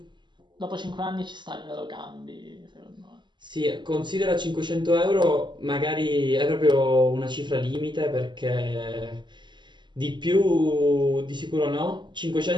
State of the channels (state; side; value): late; left; 0.22 ms